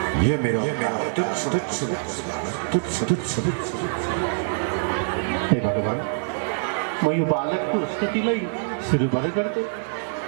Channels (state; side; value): silent; left; 62 dB below the other